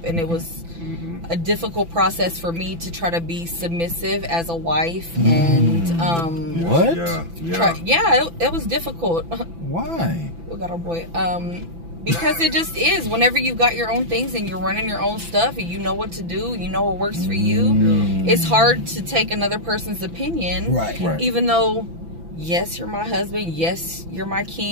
and it was a difficult process for me to try to be submissive as a wife. And, What? Yeah. it was difficult. Why? We got our boy. Because it just is. Whenever you got your own things and you're running your own stuff and you know what to do, you know what works for you, it's hard to take another person's opinion. Right. Even though, yes, you're my husband, yes, you're my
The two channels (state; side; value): late; left; 6.0 ms